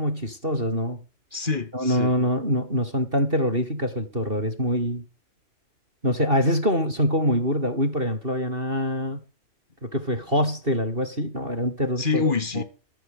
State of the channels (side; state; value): left; late; 2.7 ms